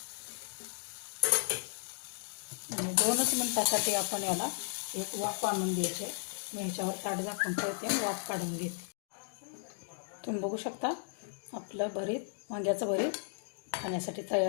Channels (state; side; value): silent; right; digital silence